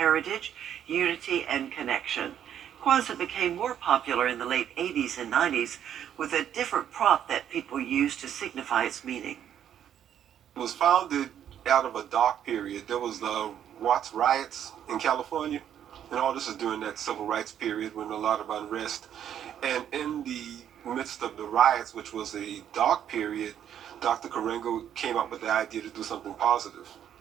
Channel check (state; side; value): quieter; left; 9.8 dB